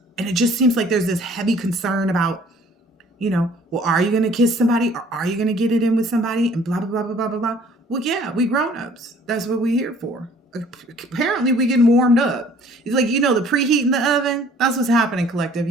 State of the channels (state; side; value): normal; both; correlation 0.55